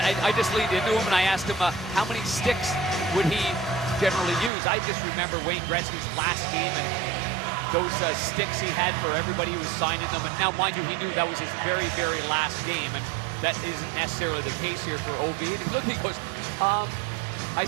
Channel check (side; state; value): left; drops out; at 4.5 s